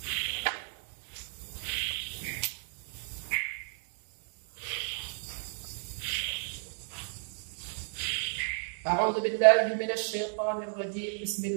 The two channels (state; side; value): silent; left; digital silence